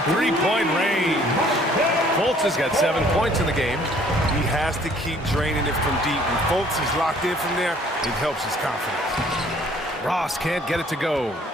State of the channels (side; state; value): both; normal; correlation 0.58